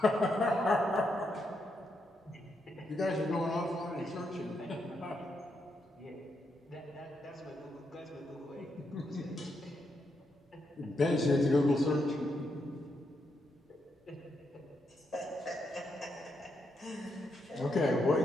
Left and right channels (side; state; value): both; normal; correlation 0.81